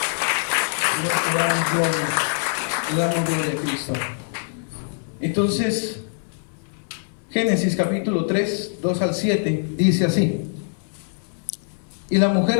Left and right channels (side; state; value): right; silent; 63 dB below the other